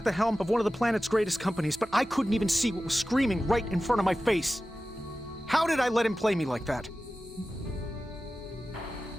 the helm of one of the planet's greatest companies, but I couldn't even see what was screaming right in front of my face. How did I let him play me like that?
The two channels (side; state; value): both; normal; correlation 0.95